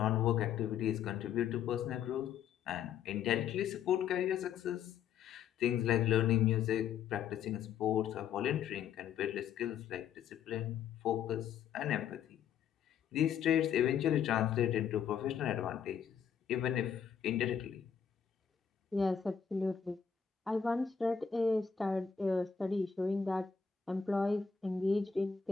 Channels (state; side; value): quieter; right; 7.6 dB